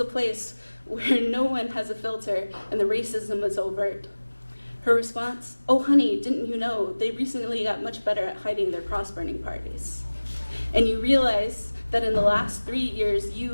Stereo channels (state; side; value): inverted; both; correlation -1.00